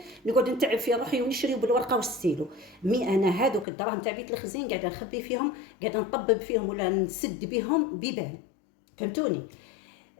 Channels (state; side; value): drops out; right; at 3.7 s